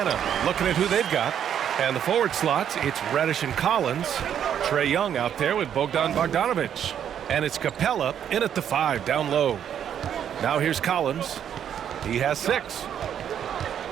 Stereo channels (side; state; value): left; quieter; 9.2 dB